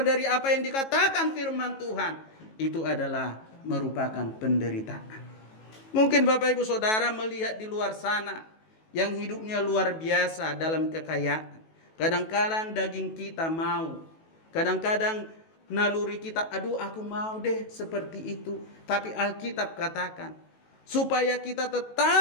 dari apa yang dikatakan firman Tuhan, itu adalah merupakan penderitaan. Mungkin Bapak Ibu Saudara melihat di luar sana yang hidupnya luar biasa dalam kekayaan. Kadang-kadang daging kita mau, kadang-kadang naluri kita, aduh aku mau deh seperti itu. Tapi Alkitab katakan, supaya kita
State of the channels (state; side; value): late; right; 18 ms